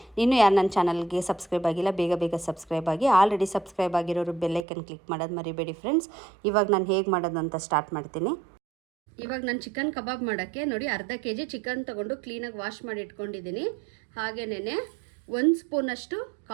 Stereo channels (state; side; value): drops out; left; at 4.7 s